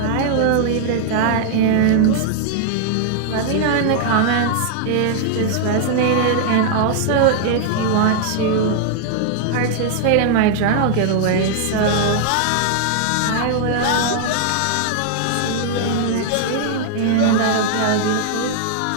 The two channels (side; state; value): both; different; correlation -0.01